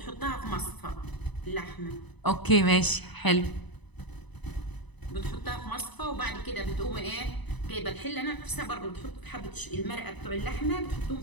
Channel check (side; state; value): right; late; 1.0 ms